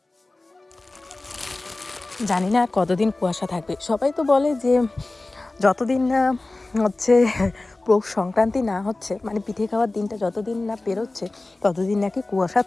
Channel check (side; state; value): right; quieter; 3.0 dB